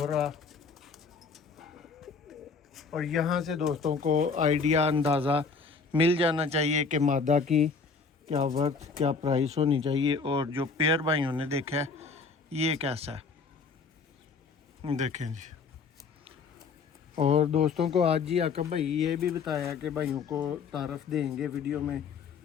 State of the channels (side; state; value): right; quieter; 5.0 dB